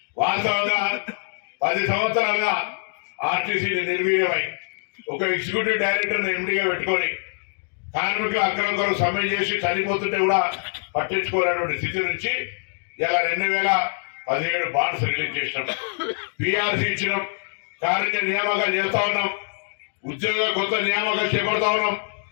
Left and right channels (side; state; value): right; silent; digital silence